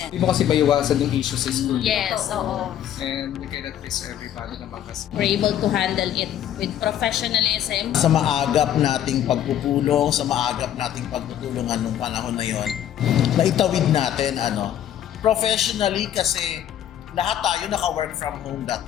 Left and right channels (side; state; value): right; quieter; 10.8 dB